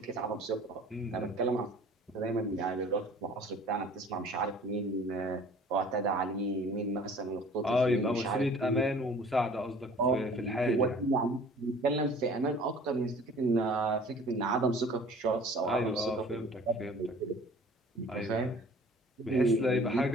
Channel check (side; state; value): both; normal; correlation 0.48